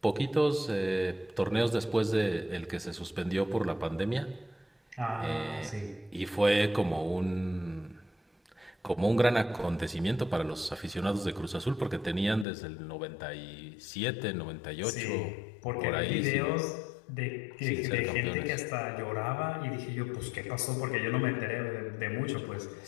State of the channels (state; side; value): drops out; right; at 12.5 s